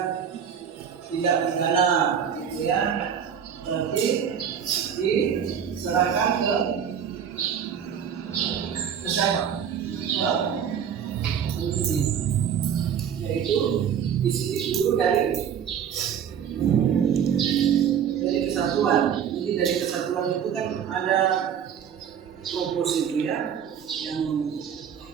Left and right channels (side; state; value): left; quieter; 8.2 dB